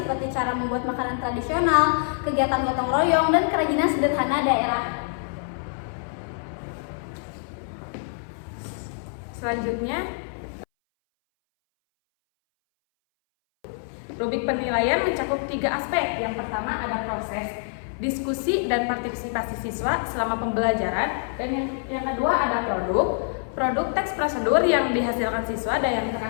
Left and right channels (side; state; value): right; silent; 60 dB below the other